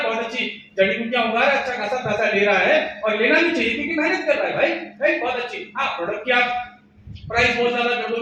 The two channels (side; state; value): both; identical; correlation 1.00